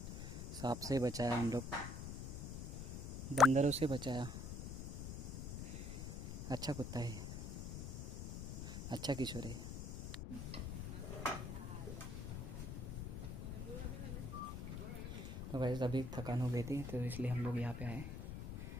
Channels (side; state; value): left; noise; rumble, 6 dB below the sound